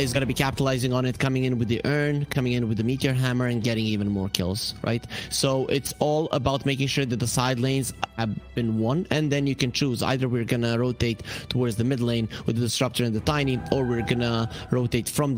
going to be capitalizing on it, coming in with the Urn, coming in with the Meteor Hammer, and getting even more kills, right? So it's all about making sure that the side lanes have been won, and then you can choose. Either we're going to rotate towards the mid lane with the Disruptor and the Tiny, or we're going to rotate from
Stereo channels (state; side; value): identical; both; correlation 1.00